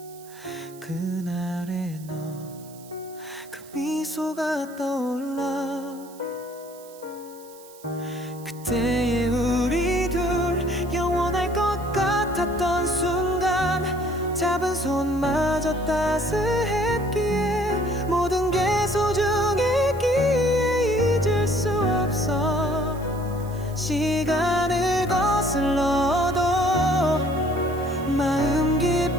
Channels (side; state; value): right; noise; hiss, 22 dB below the sound